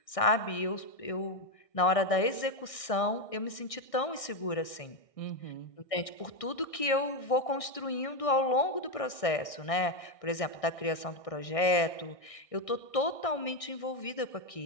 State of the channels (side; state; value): right; late; 1.6 ms